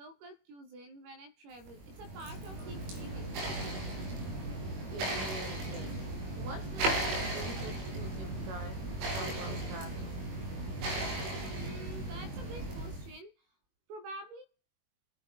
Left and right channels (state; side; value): late; left; 21 ms